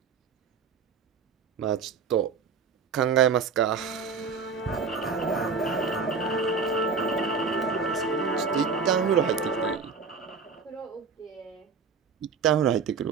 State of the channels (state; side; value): quieter; left; 5.5 dB